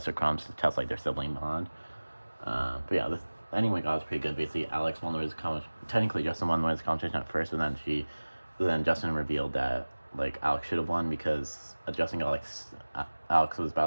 Crumbs to test like their sibling bond. But yeah, this ending we got was pretty good. Basically, Alex won the Wiz competition. Technically, Justin won the Wiz competition at first, but then Justin revealed that like Alex should have won because Justin got like Alex was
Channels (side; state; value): both; inverted; correlation -1.00